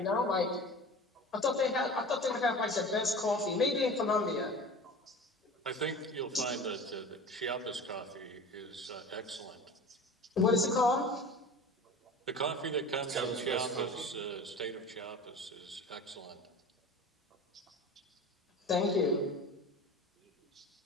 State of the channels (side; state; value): both; normal; correlation 0.36